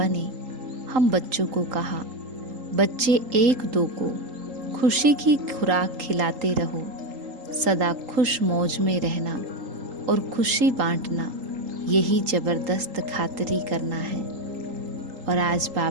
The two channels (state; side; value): late; left; 3.8 ms